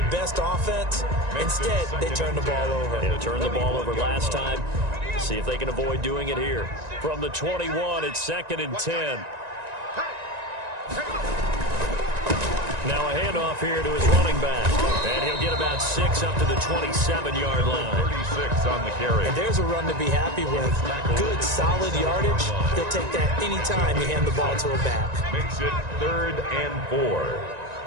best offense. Instead, they turn the ball over. They turned the ball over last time. See if they can avoid doing it here. From the 21, it's 2nd and 10. Now a handoff here to his running back. And he'll get about 6 up to the 27-yard line. 36 on the carry. And there's a run to be happy with. Good, solid yardage. They'll take that any time you hand the ball to a back. Makes it 3rd and 4.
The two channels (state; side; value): late; left; 1.9 ms